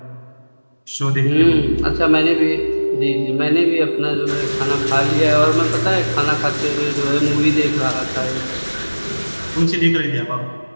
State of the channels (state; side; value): inverted; both; correlation -1.00